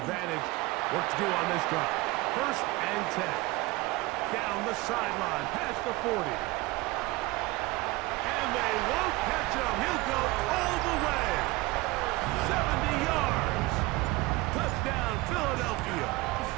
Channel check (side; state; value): left; quieter; 21.3 dB